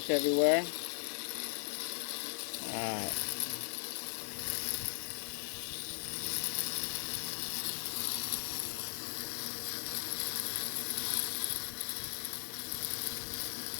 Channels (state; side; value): silent; right; digital silence